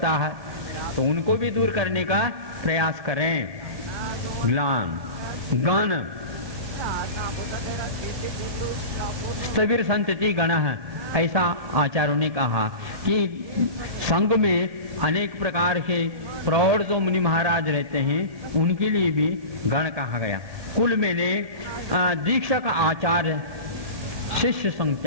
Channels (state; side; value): late; left; 1.7 ms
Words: है, तो उनको भी दूर करने का प्रयास करें। ग्लान, गण, स्थविर संतति गण है, ऐसा आचार्यों ने कहा कि संघ में अनेक प्रकार के प्रौढ़ जो मुनि महाराज रहते हैं उनके लिए भी गण कहा गया। कुल में ने दीक्षक, आचार्य, शिष्य